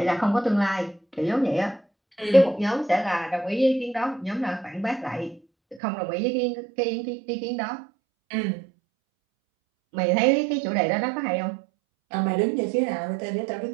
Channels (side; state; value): left; drops out; at 5.8 s